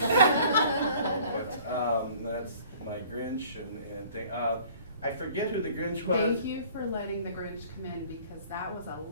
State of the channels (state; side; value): inverted; both; correlation -0.52